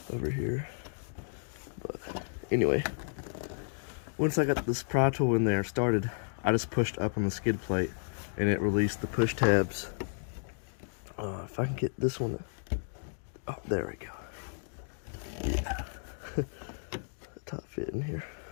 over here. But anyway, once I got this pry tool in there started, I just pushed up on the skid plate and it released the push tabs. If I can get this one, oh, there we go. Yeah, top fit in here.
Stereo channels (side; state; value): right; silent; digital silence